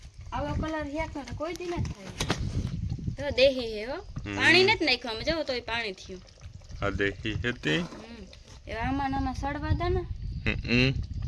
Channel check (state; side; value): identical; both; correlation 1.00